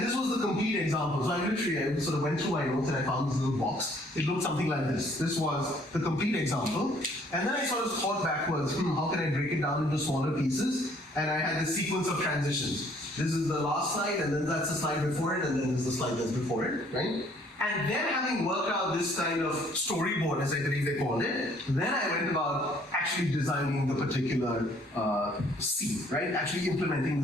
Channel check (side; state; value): both; normal; correlation 0.61